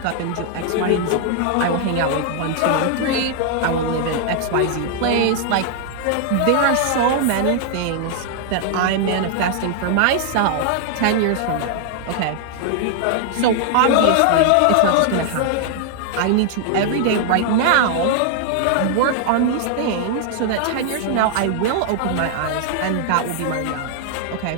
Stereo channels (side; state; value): both; different; correlation 0.00